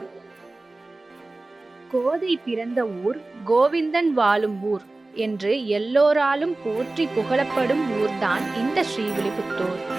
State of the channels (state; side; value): quieter; left; 3.0 dB